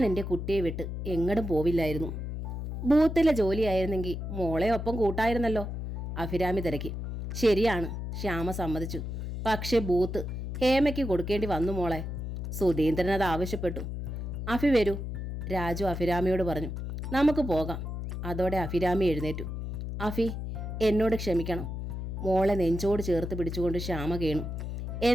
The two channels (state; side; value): noise; left; hum, 5 dB below the sound